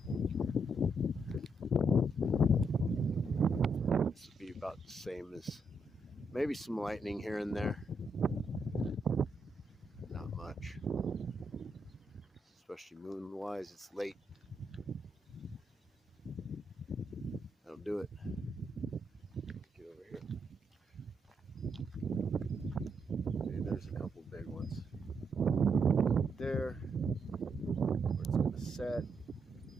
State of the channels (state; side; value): normal; both; correlation 0.78